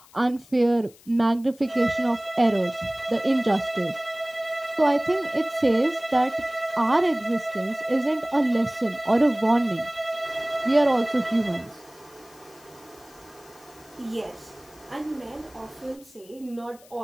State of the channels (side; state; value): left; noise; hiss, 26 dB below the sound